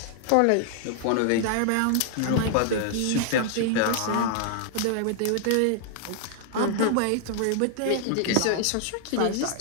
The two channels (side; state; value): both; different; correlation 0.00